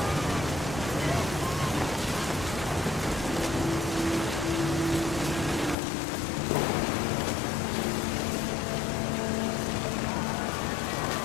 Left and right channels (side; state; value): right; drops out; at 5.8 s